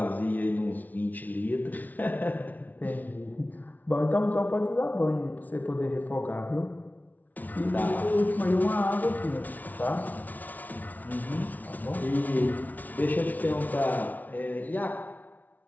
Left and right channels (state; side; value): late; right; 0.077 ms